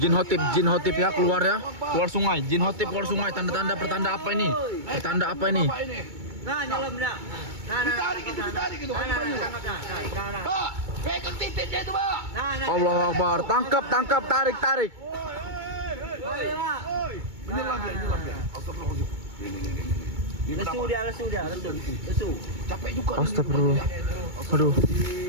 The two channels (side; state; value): left; late; 2.2 ms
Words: hotip ya keluar ya. Keluar sungai. Jin hotip keluar sungai. Tanda-tanda pertanda apa ini? Pertanda apa ini? Bapak ini. Nah, nyelam dah. Ditarik itu. Nah. Pak, pegang titiknya itu Pak. Nah. Allahu Akbar. Tangkap, tarik. Menyelam dia. Astagfirullahaladzim. Ini Lesu dia. capek juga. Astagfirullah. Aduh.